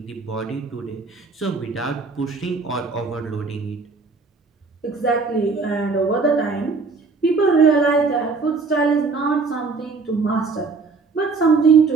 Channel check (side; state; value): left; quieter; 4.3 dB